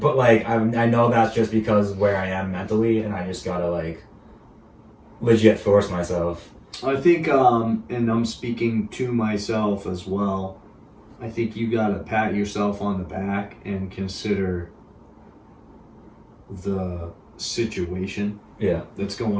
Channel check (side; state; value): both; identical; correlation 1.00